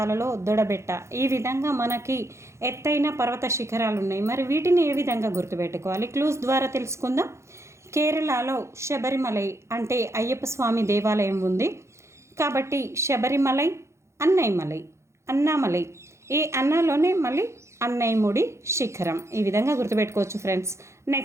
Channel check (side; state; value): left; late; 0.14 ms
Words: దొడబెట్ట. ఈ విధంగా మనకి ఎత్తైన పర్వత శిఖరాలు ఉన్నాయి. మరి వీటిని ఏ విధంగా గుర్తుపెట్టుకోవాలి? క్లూస్ ద్వారా తెలుసుకుందాం. కేరళలో శబరిమలై అంటే అయ్యప్ప స్వామి దేవాలయం ఉంది కాబట్టి శబరిమలై, అన్నామలై, ఈ అన్నాలోనే మళ్ళీ అన్నయ్యముడి శిఖరం. ఈ విధంగా గుర్తుపెట్టుకోవచ్చు ఫ్రెండ్స్.